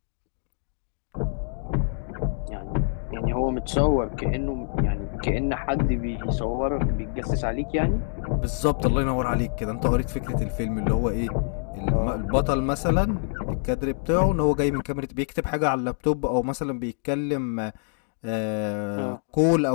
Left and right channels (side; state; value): right; silent; digital silence